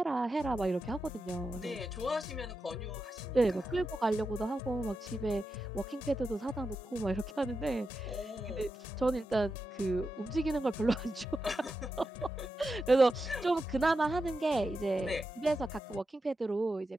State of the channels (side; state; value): both; normal; correlation 0.89